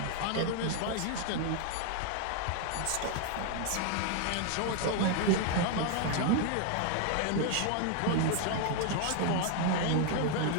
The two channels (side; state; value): both; different; correlation 0.00